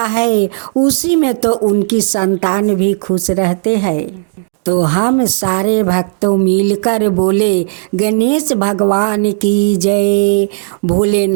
है। उसी में तो उनकी संतान भी खुश रहते हैं। तो हम सारे भक्तों मिलकर बोले गणेश भगवान की जय,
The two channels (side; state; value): left; silent; 67 dB below the other